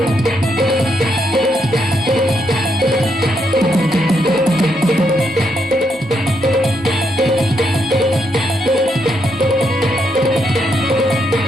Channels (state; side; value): normal; both; correlation 0.78